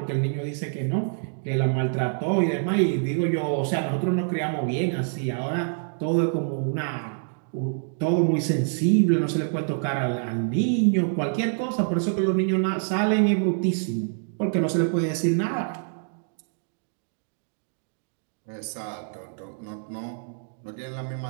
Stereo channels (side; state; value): left; silent; digital silence